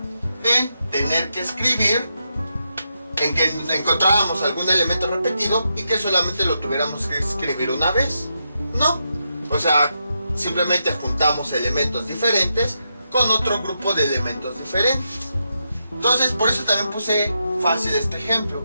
en tener que escribir, en que encontráramos algún elemento repetido y que solamente lo tuviéramos que escribir una vez. No, o sea, simplemente juntamos elementos diferentes con otro grupo de elementos diferentes. Entonces, por eso también puse fácil este ejemplo,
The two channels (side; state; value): both; inverted; correlation -0.84